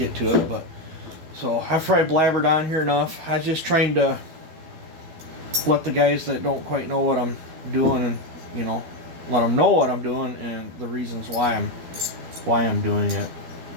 to it. But so I've probably blabbered on here enough. I'm just trying to let the guys that don't quite know what I'm doing, and let them know what I'm doing and the reasons why I'm doing it.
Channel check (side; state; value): left; late; 12 ms